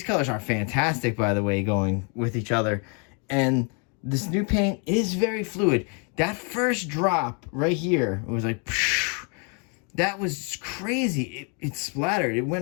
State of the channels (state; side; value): quieter; right; 36.6 dB